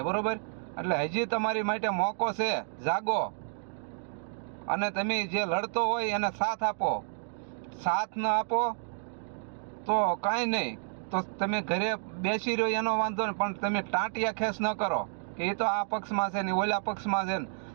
બરોબર? એટલે હજી તમારી માટે મોકો છે, જાગો અને તમે જે લડતો હોય એને સાથ આપો. સાથ ન આપો તો કાંઈ નહીં, તો તમે ઘરે બેસી રહ્યો એનો વાંધો નહીં, પણ તમે ટાંટિયા ખેસ ન કરો કે એ તો આ પક્ષમાં છે ને ઓલા પક્ષમાં છે ને.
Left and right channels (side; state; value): left; silent; digital silence